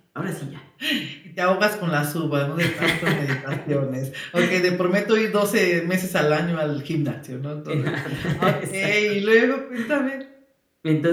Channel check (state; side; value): identical; both; correlation 1.00